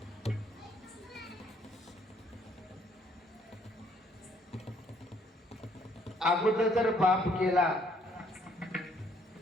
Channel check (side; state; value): both; normal; correlation 0.66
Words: अगोदर जर बाप गेला